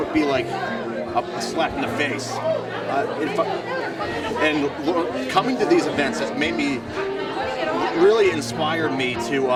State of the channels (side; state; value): both; identical; correlation 1.00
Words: be like a slap in the face. Coming to these events has made me really inspired me to